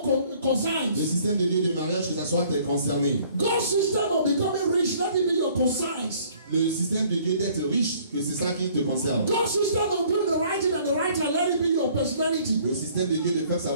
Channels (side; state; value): both; inverted; correlation -0.58